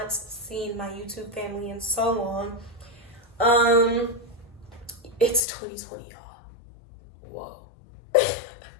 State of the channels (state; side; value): drops out; right; at 5.4 s